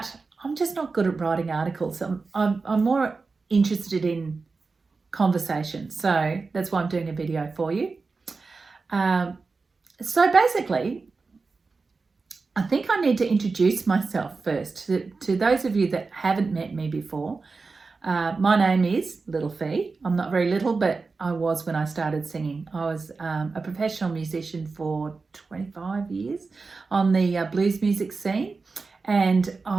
I'm just not good at writing articles. I'm more interested in conversation, so that's why I'm doing a video for you. So basically, I think I need to introduce myself first to those of you that haven't met me before. My name is Little Fee. I'm not very little, but I was when I started singing. I was a professional musician for 25 years on the blues music scene, and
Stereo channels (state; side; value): quieter; left; 4.2 dB